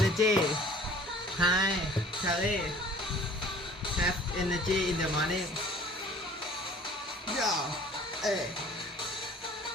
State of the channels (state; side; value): normal; both; correlation 0.50